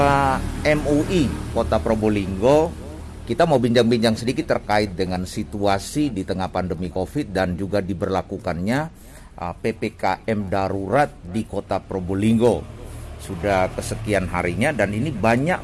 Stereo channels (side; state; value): both; identical; correlation 1.00